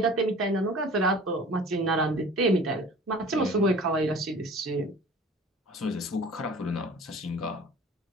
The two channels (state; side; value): normal; both; correlation 0.44